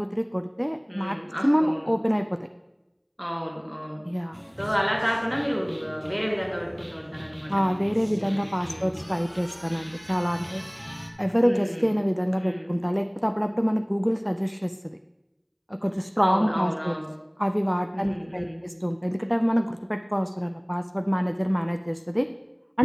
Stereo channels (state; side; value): identical; both; correlation 1.00